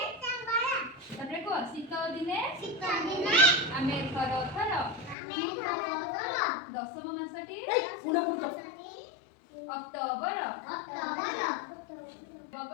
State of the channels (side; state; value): right; drops out; at 5.2 s